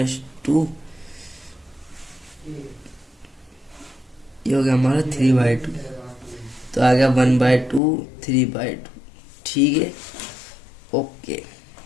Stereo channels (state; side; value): drops out; right; at 7.8 s